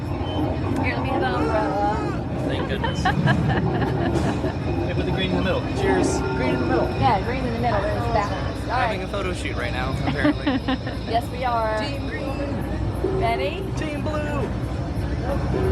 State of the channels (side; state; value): both; identical; correlation 1.00